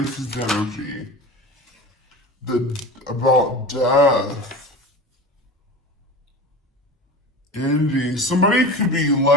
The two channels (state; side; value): normal; both; correlation 0.32